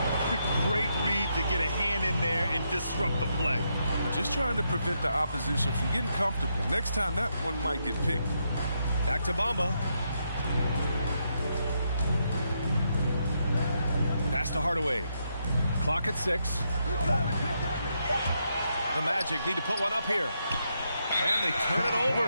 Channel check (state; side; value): inverted; both; correlation -0.80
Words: Great read to get a hand in there and disrupt the play. We're just trying to prevent the opposition from getting comfortable. Next time, that one might get picked. Back to Bamba. Pass to Hardaway. Clock at 6. The Magic need to put one up here. And they turn it